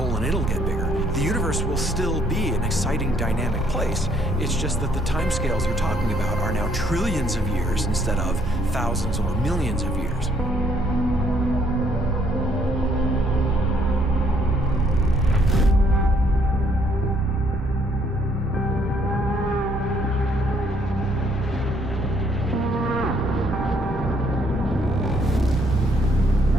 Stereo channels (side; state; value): both; normal; correlation 0.67